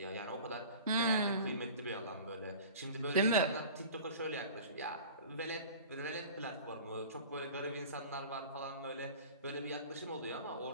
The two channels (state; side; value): inverted; both; correlation -0.40